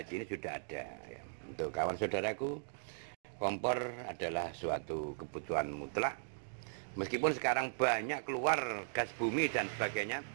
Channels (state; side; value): silent; left; digital silence